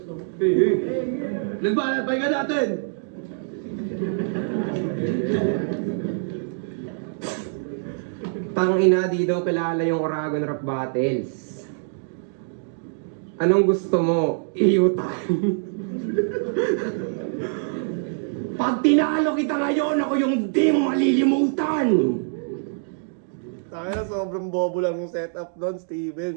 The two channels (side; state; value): left; silent; digital silence